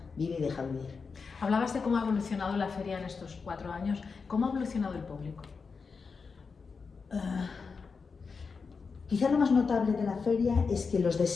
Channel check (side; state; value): right; quieter; 5.1 dB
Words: Vive y deja vivir. Hablabas de cómo ha evolucionado la feria en estos 4 años. ¿Cómo ha evolucionado el público? Quizá lo más notable de la feria es que los de